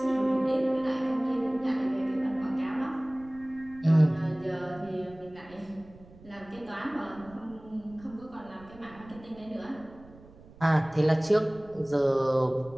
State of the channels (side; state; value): right; noise; rumble, 22 dB below the sound